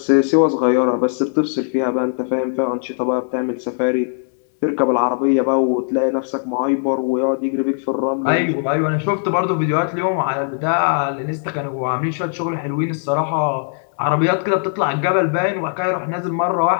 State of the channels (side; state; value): right; silent; digital silence